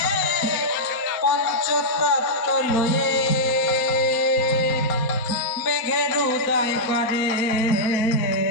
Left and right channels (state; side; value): late; right; 4.1 ms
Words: পঞ্চতত্ত্ব লয়ে মেঘের উদয় করে